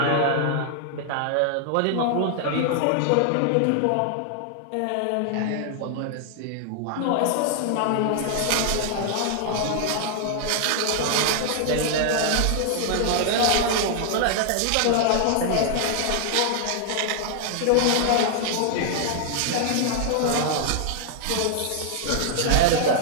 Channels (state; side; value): different; both; correlation 0.00